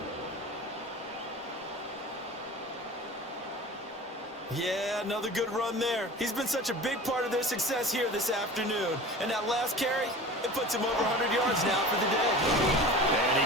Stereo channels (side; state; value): both; normal; correlation 0.37